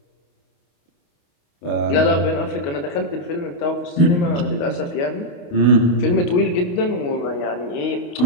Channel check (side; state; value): right; late; 28 ms